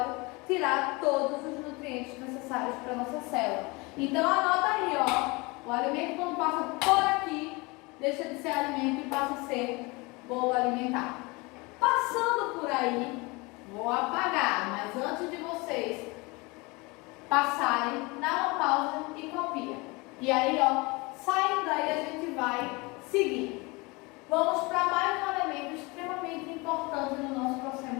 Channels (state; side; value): quieter; right; 25.7 dB